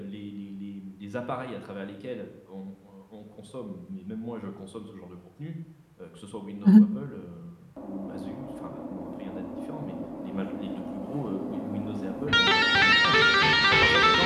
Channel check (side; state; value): both; identical; correlation 1.00